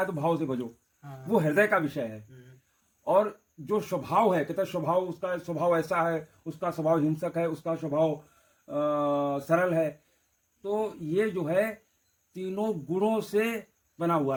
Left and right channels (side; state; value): both; identical; correlation 1.00